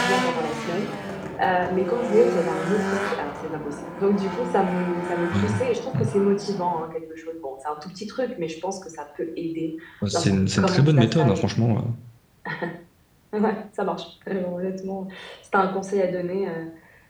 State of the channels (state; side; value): identical; both; correlation 1.00